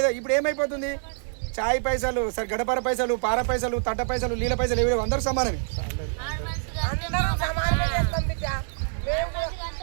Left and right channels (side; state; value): left; silent; digital silence